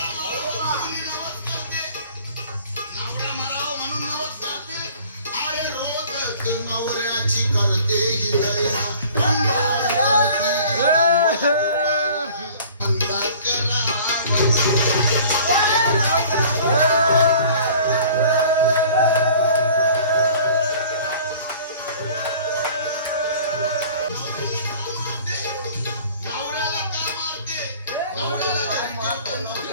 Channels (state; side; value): inverted; both; correlation -0.49